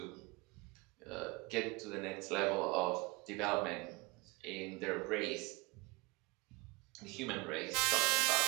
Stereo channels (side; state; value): left; quieter; 26.7 dB